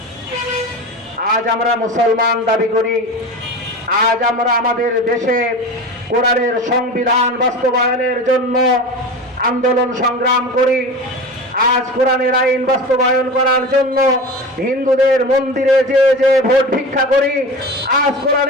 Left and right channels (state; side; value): normal; both; correlation 0.30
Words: আজ আমরা মুসলমান দাবি করি, আজ আমরা আমাদের দেশে কোরআনের সংবিধান বাস্তবায়নের জন্য আন্দোলন সংগ্রাম করি। আজ কোরআনের আইন বাস্তবায়ন করার জন্য হিন্দুদের মন্দিরে যে যে ভোট ভিক্ষা করি। আজ